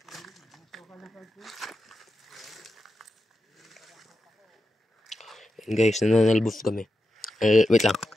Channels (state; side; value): normal; both; correlation 0.90